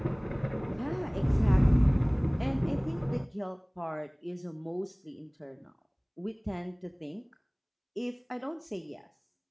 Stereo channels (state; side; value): identical; both; correlation 1.00